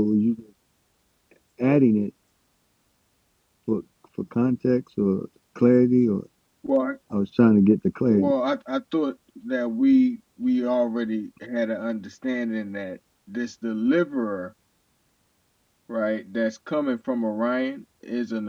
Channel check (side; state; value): both; identical; correlation 1.00